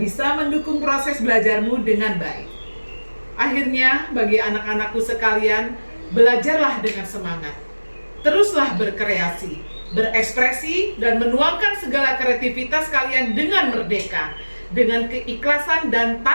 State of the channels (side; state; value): both; inverted; correlation -1.00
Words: mendukung proses belajarmu dengan baik. Akhirnya, bagi anak-anakku sekalian, belajarlah dengan semangat. Teruslah berkreasi, berekspresi, dan menuangkan segala kreativitas kalian dengan merdeka, dengan keikhlasan dan